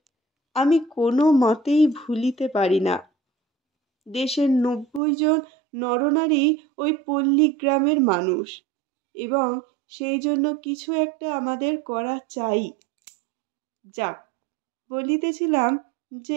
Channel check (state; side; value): drops out; left; at 5.0 s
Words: আমি কোনো মতেই ভুলিতে পারি না, দেশের 90 জন নরনারী ওই পল্লীগ্রামের মানুষ, এবং সেই জন্য কিছু একটা আমাদের করা চাই। যাক, বলিতেছিলাম